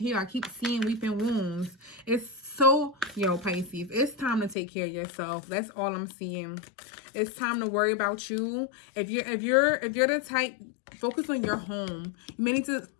I keep seeing weeping wounds. It's so, yo, Pisces, it's time to take care of yourself. That's all I'm seeing. It's time to worry about you. If you're the type, focus on your home. You may need to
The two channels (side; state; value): right; drops out; at 4.5 s